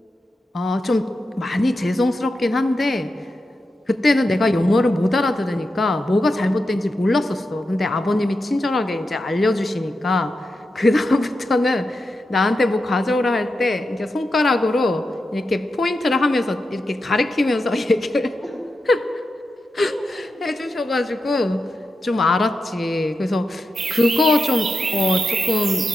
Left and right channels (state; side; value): normal; both; correlation 0.89